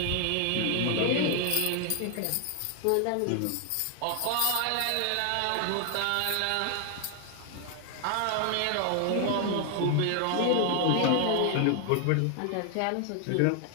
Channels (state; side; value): different; both; correlation 0.00